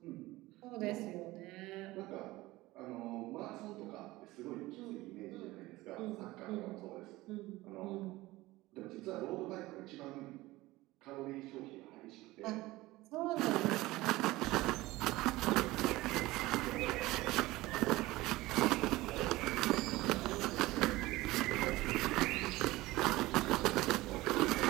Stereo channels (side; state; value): left; quieter; 19.0 dB